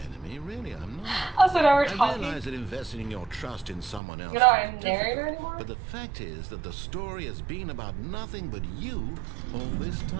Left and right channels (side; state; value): left; drops out; at 4.0 s